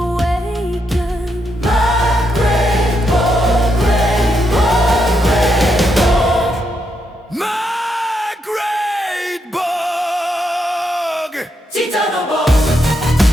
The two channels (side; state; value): both; normal; correlation 0.81